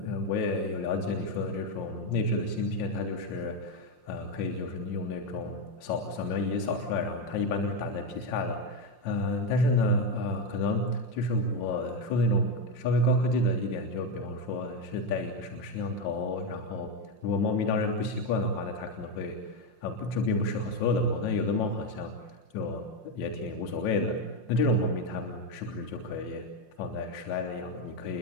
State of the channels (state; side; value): late; right; 5.7 ms